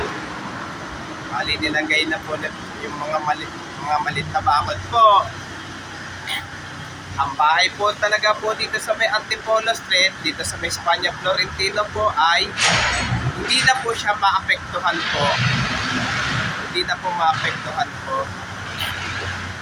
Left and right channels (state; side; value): identical; both; correlation 1.00